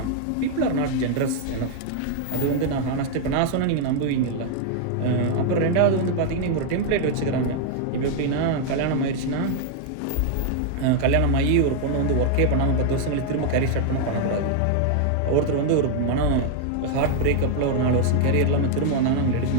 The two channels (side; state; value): both; different; correlation 0.00